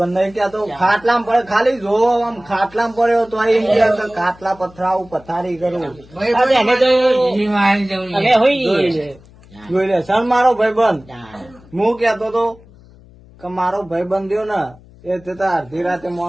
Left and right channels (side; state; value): left; noise; hum, 24 dB below the sound